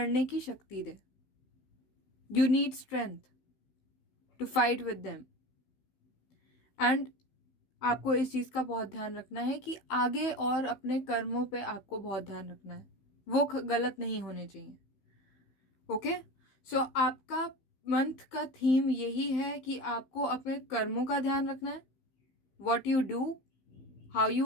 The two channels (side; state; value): right; late; 15 ms